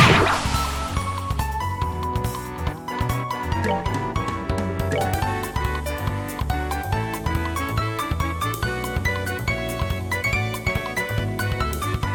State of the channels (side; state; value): both; identical; correlation 1.00